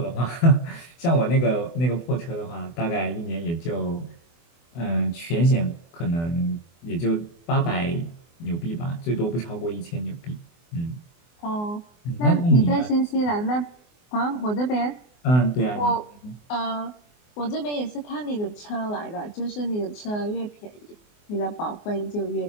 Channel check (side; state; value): right; late; 24 ms